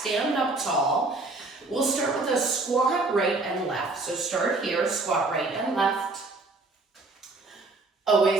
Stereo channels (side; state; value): left; quieter; 3.3 dB